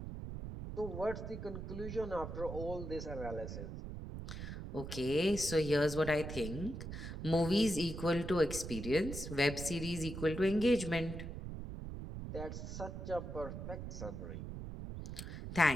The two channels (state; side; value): noise; right; rumble, 7 dB below the sound